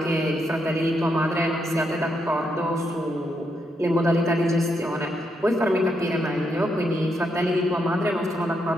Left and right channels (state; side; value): normal; both; correlation 0.80